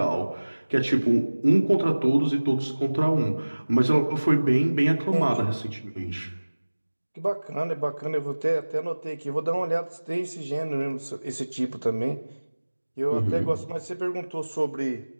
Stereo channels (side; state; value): both; inverted; correlation -1.00